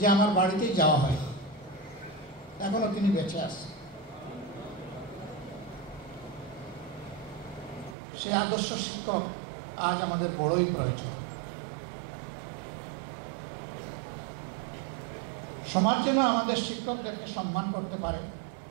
আমার বাড়িতেই যাওয়া হয়। এখনো তিনি বেঁচে আছে। সে আদর্শ শিক্ষক আজ আমাদের বড়ই প্রয়োজন। সমাজ যেন আমাদের শিক্ষকদেরকে সম্মান করতে পারে,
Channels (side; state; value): left; drops out; at 8.0 s